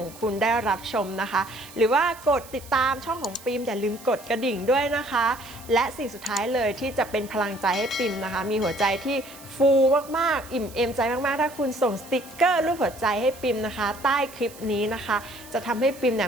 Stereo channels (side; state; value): right; noise; hiss, 19 dB below the sound